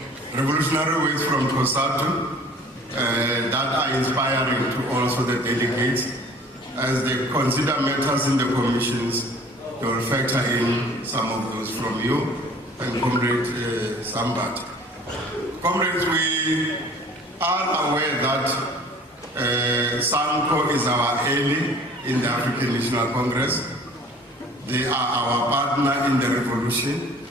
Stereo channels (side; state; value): both; normal; correlation 0.50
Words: revolutionary words from Tosatu that are inspiring to also the delegates. As they consider matters in the commissions, they will factor in some of those from you and Comrade Sambat. Comrades, we are aware that SANCO is our ally in the African National Congress. They are our partner in the revolution,